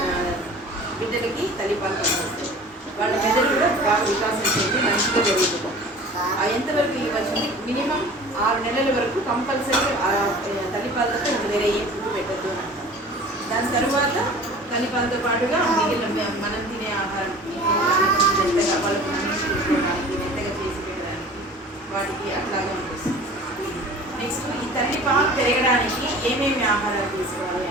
బిడ్డలకి తల్లిపాలు పనికొస్తాయి. వాళ్ళ మెదడు కూడా బాగా వికాసం చెంది మంచిగా జరుగుతుంది. ఎంతవరకు ఇవ్వచ్చు మినిమం 6 నెలల వరకు కంపల్సరీ తల్లిపాలతో వేరే ఏ ఫుడ్ పెట్టద్దు అని అంటాం. దాని తర్వాత తల్లిపాలతో పాటుగా మిగిలిన మనం తినే ఆహారం మెత్తగా వాళ్ళకు తీసుకోవడానికి, మెత్తగా చేసి పెట్టడానికి వాటికి అట్లాగే ఉంటుంది. నెక్స్ట్ ఈ తల్లిపాలు పెరగడానికి ఏమేమి ఆహారాలు తీసుకోవాలి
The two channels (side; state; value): both; normal; correlation 0.43